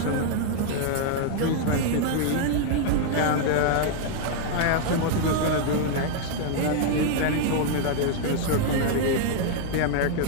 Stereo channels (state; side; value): different; both; correlation 0.00